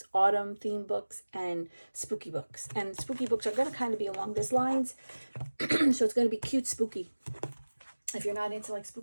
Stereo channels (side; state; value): both; inverted; correlation -1.00